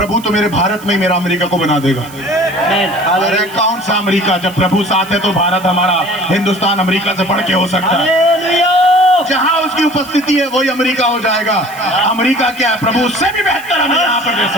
तो मेरे भारत में ही मेरा अमेरिका को बना देगा। अरे कौन सा अमेरिका, जब प्रभु साथ है तो भारत हमारा, हिंदुस्तान अमेरिका से बढ़ के हो सकता है। जहां उसकी उपस्थिति है वही अमेरिका हो जाएगा। अमेरिका क्या है, प्रभु उससे भी बेहतर हमें यहाँ पर दे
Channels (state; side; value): noise; right; hiss, 20 dB below the sound